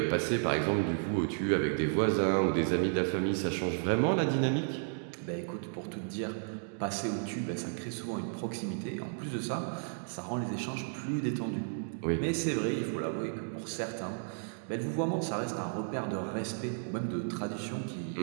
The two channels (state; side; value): silent; left; digital silence